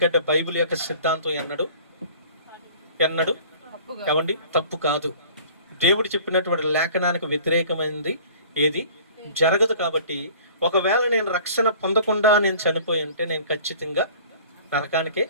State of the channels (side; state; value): both; inverted; correlation -0.47